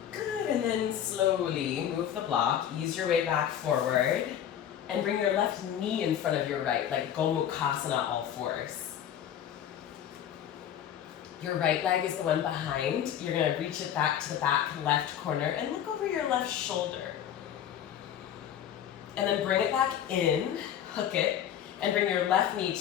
Good, and then slowly move the block, ease your way back forward, and bring your left knee in front of your right, like Gomukhasana, all fours. Your right leg is the one behind. You're gonna reach it back to the back left corner and look over your left shoulder. And then bring it back in, hook it, And bring your left knee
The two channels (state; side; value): quieter; right; 10.0 dB